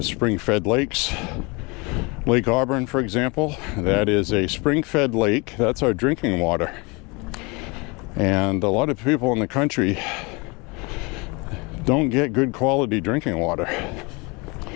spring-fed lakes. Lake Auburn, for example, that is a spring-fed lake. That's our drinking water. And a lot of people in the country don't get good quality drinking water.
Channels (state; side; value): quieter; right; 27.9 dB